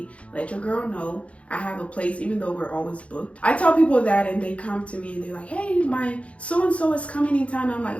let your girl know. I have a place, even though we're always booked. I tell people that and they come to me and they're like, hey, my so-and-so is coming in town. I'm like,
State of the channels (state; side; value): late; right; 0.063 ms